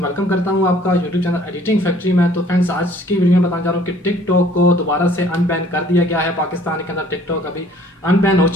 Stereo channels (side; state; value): both; normal; correlation 0.56